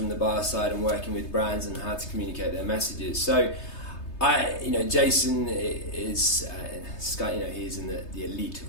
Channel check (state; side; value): late; right; 3.3 ms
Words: the bar side and working with brands and how to communicate their messages. So Jason is he's in the elite